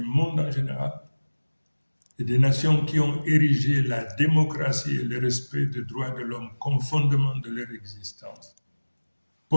monde en général et des nations qui ont érigé la démocratie et le respect des droits de l'homme comme fondement de leur existence,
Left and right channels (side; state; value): both; inverted; correlation -1.00